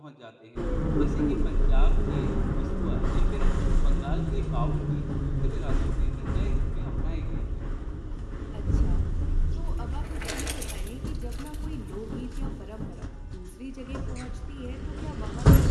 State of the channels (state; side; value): identical; both; correlation 1.00